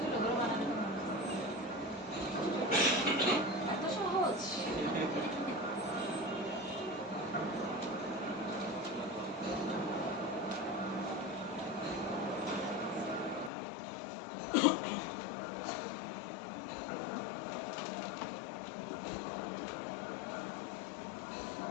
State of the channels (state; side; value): drops out; right; at 13.5 s